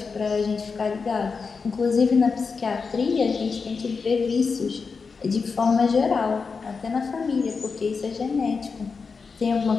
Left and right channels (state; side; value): quieter; right; 5.0 dB